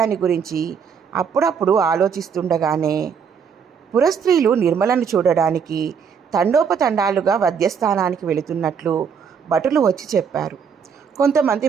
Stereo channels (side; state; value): left; quieter; 6.7 dB